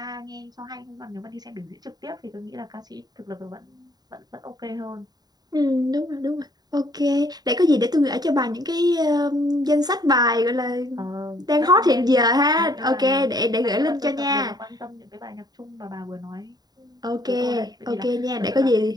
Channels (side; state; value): left; late; 0.19 ms